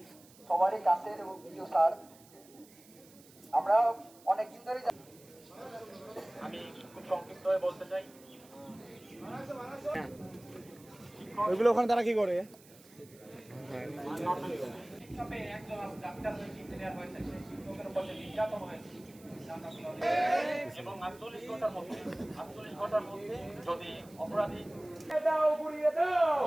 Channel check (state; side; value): noise; right; hiss, 24 dB below the sound